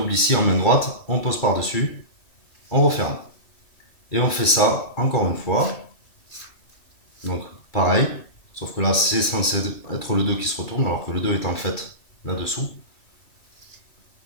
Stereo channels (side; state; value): right; late; 2.3 ms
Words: ici en main droite, on pose par-dessus, on referme. Et on fait ça encore une fois. Donc pareil, sauf que là c'est censé être le 2 qui se retourne, alors que le 2 est en fait là-dessous.